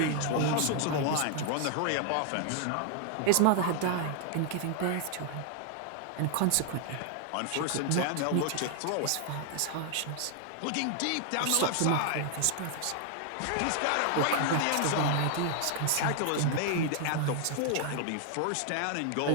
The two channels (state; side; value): different; both; correlation 0.00